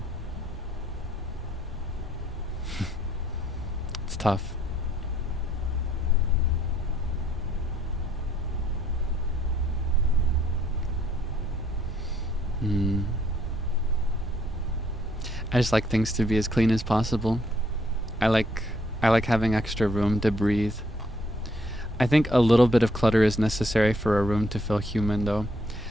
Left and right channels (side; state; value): both; normal; correlation 0.68